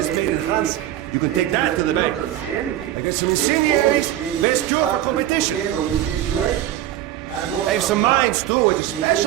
getting made in France. big, You can they take that to the don't bank. say anything. I got some They incendiaries. always say Best job partners competition. depend on the situation. And what's I have up some now? mines too at a They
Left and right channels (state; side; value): quieter; left; 12.7 dB